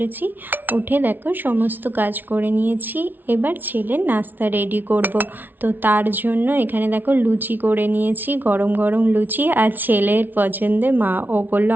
উঠে দেখো সমস্ত কাজ করে নিয়েছি। এবার ছেলের নাস্তা রেডি করব। তো তার জন্য এখানে দেখো লুচি করে নিয়েছি, গরম গরম লুচি। আর ছেলের পছন্দে মা ও বললো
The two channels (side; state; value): left; late; 0.089 ms